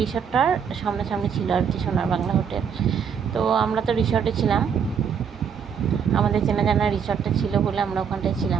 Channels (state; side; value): quieter; left; 7.2 dB